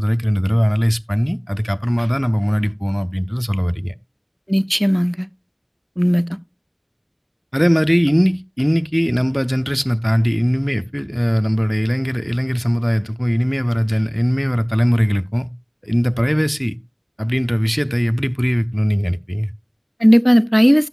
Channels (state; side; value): identical; both; correlation 1.00